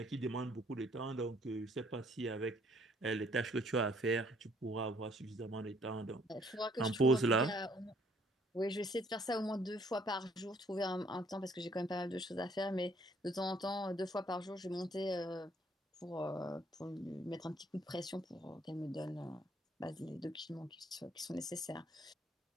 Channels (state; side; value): normal; both; correlation 0.63